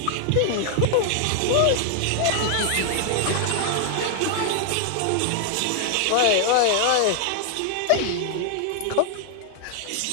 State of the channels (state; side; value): different; both; correlation 0.00